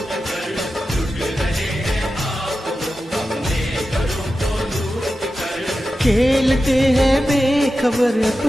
खेलते हैं बेखबर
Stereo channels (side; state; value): both; normal; correlation 0.92